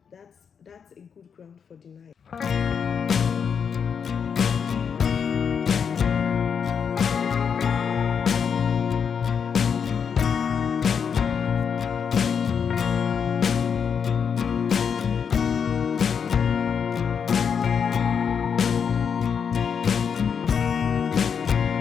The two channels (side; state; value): right; quieter; 6.9 dB